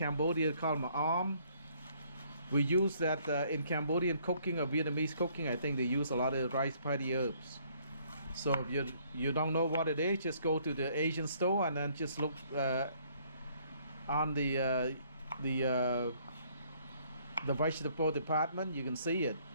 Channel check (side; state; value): both; inverted; correlation -0.64